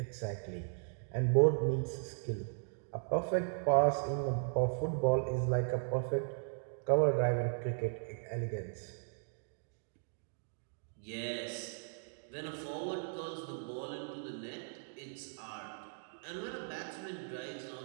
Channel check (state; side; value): silent; left; digital silence